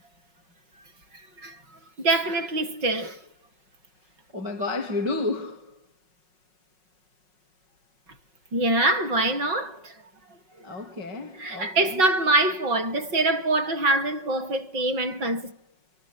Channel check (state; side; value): late; left; 5.4 ms